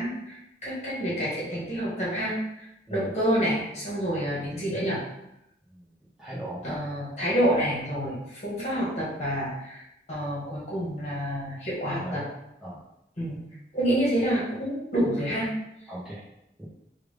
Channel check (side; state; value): both; normal; correlation 0.54